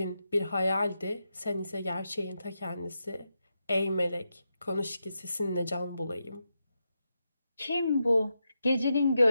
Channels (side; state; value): both; inverted; correlation -0.87